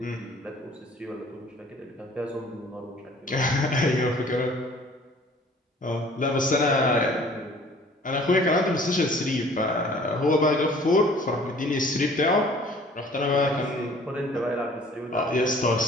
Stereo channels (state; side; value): normal; both; correlation 0.52